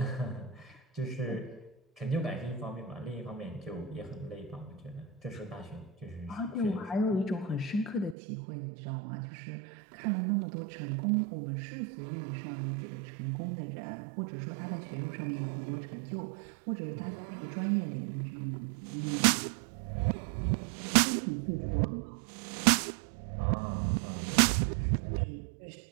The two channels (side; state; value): left; drops out; at 8.2 s